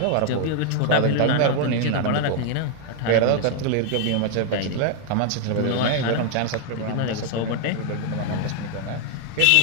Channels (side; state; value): both; different; correlation 0.00